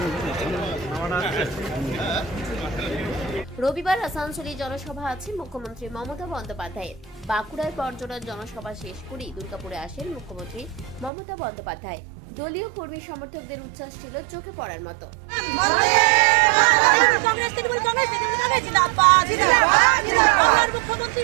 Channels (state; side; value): drops out; left; at 11.1 s